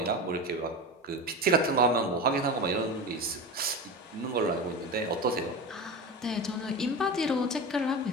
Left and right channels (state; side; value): normal; both; correlation 0.25